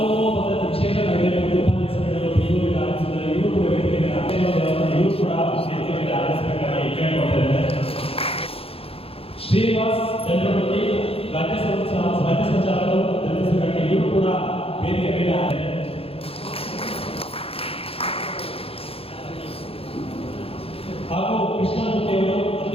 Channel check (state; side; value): late; right; 0.27 ms